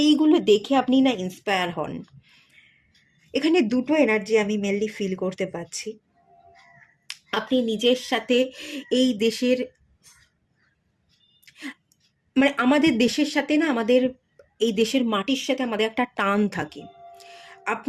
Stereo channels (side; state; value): both; identical; correlation 1.00